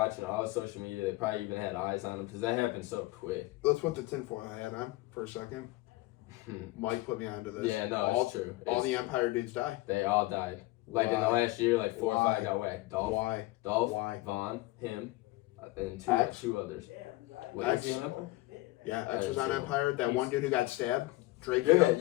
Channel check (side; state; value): right; quieter; 19.9 dB